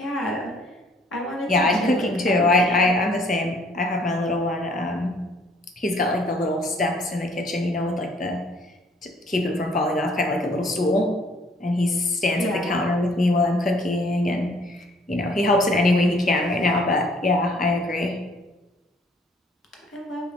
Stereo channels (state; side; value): normal; both; correlation 0.60